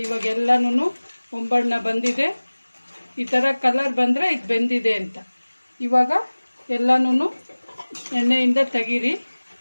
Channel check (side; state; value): both; inverted; correlation -1.00